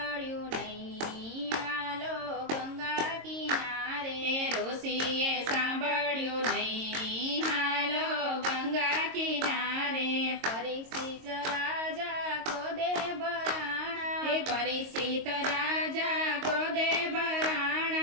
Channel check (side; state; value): left; late; 22 ms